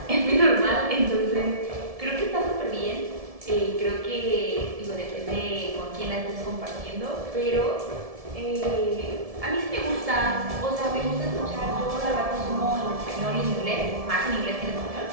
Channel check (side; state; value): left; late; 1.7 ms